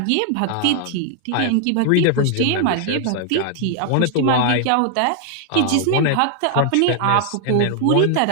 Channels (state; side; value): different; both; correlation 0.00